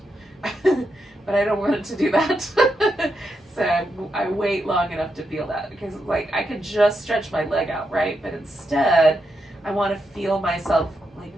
but I don't want it to do that. So I wait long enough to feel that, because like I can just stretch my leg out, right? But instead, I want to feel myself like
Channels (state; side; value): normal; both; correlation 0.84